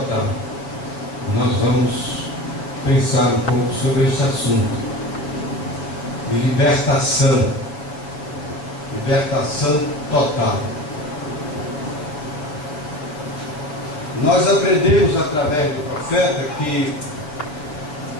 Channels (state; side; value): late; right; 6.8 ms